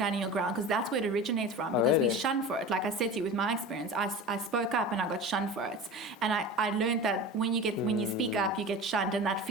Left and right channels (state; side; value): normal; both; correlation 0.32